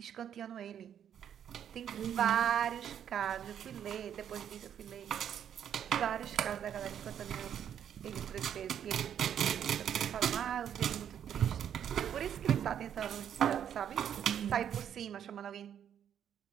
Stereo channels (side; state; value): left; quieter; 9.3 dB